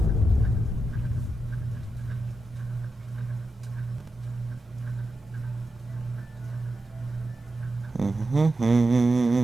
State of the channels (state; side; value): normal; both; correlation 0.89